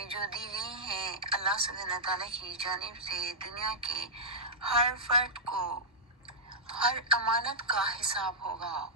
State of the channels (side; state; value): both; normal; correlation -0.12